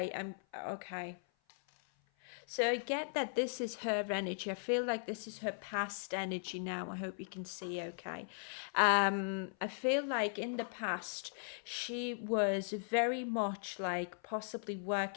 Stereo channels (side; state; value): right; silent; 52 dB below the other